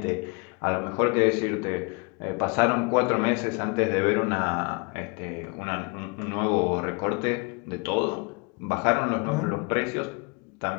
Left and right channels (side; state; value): right; quieter; 31.7 dB